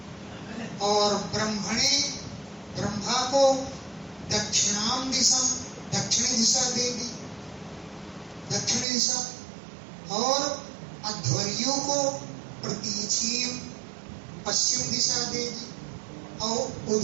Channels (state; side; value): drops out; left; at 8.8 s